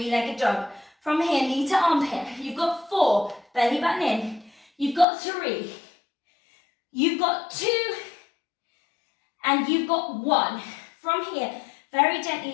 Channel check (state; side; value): drops out; right; at 5.1 s